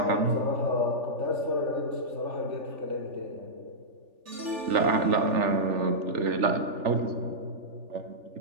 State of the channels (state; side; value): late; left; 3.4 ms